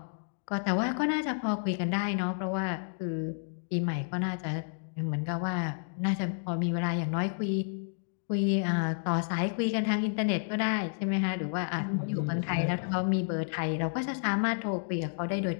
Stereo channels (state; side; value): silent; right; digital silence